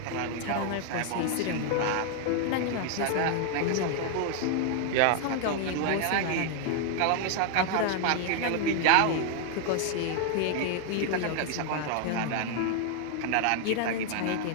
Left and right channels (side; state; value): both; different; correlation 0.00